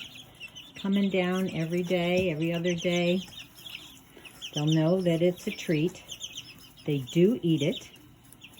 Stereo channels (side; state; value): both; identical; correlation 1.00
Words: coming down every day, every other day, they'll know that it's a treat. They do eat it.